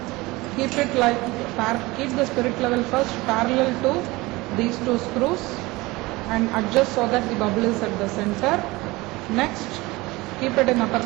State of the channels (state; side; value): quieter; left; 21.6 dB